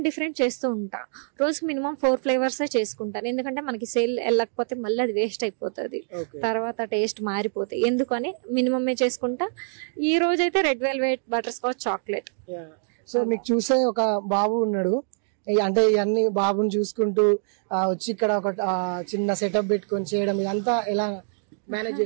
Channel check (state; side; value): silent; left; digital silence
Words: చేస్తూ ఉంటా. రోజుకి మినిమం 4 flavors చేసుకుంటాను. ఎందుకంటే మనకి సేల్ వెళ్ళకపోతే మళ్ళీ అది వేస్ట్ అయిపోతుంది, తర్వాత టేస్ట్ మారిపోతాయి. ఎందుకని మినిమమే చేసుకుంటా. ఈ రోజు అయితే red velvet, butter scotch, chocolate. So మీకు చూసే ఒక బాబు ఉన్నాడు, అంటే ఇవన్నీ బాబుని చూసుకుంటూ వచ్చి ఇక్కడ ఒక చిన్న సెటప్ పెట్టుకొని చేయడం, ఇదంతా ఎలా మేనేజ్